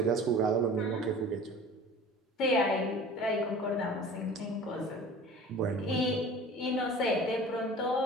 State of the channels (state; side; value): normal; both; correlation 0.42